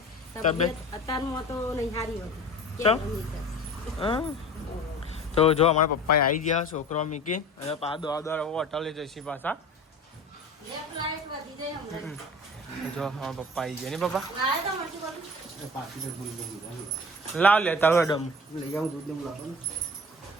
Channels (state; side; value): normal; both; correlation 0.39